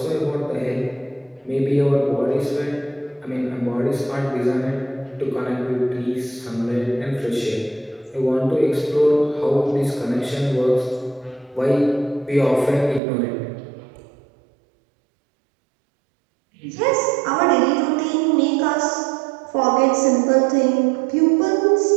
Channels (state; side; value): drops out; left; at 13.0 s